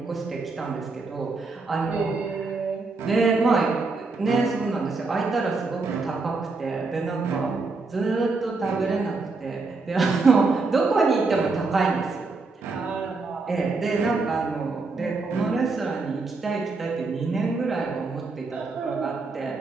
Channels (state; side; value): quieter; left; 3.8 dB